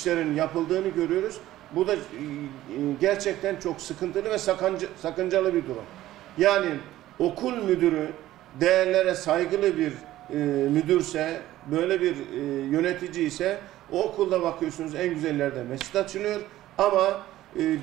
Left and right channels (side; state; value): left; quieter; 14.7 dB